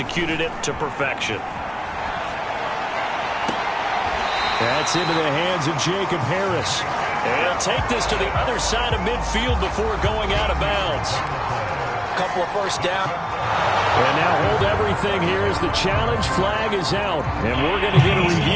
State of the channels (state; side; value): identical; both; correlation 1.00